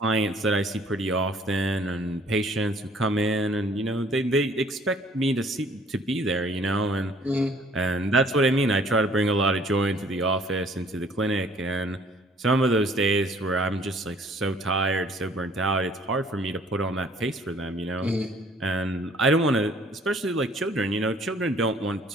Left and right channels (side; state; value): both; normal; correlation 0.58